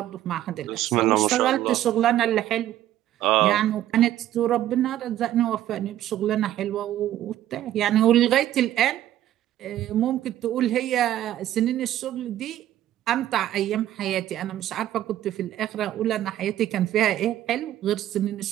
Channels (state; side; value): quieter; left; 12.8 dB